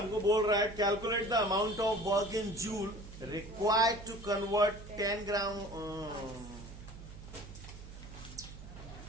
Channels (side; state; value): right; noise; hum, 14 dB below the sound